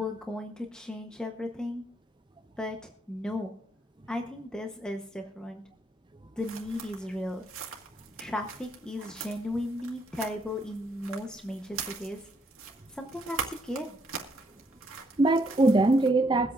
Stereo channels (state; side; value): normal; both; correlation 0.72